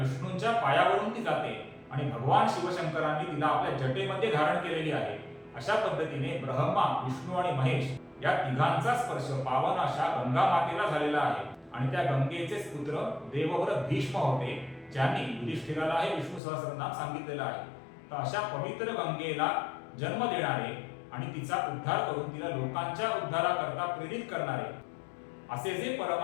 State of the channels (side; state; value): right; drops out; at 16.4 s